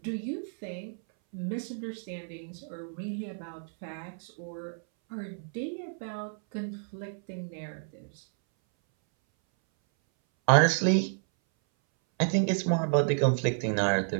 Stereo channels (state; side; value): silent; left; 58 dB below the other